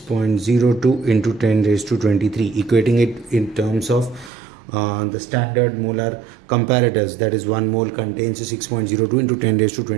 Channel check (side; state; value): left; drops out; at 4.3 s